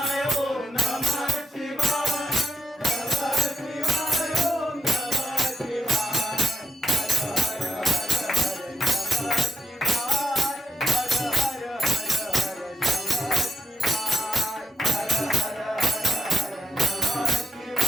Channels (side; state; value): both; normal; correlation 0.82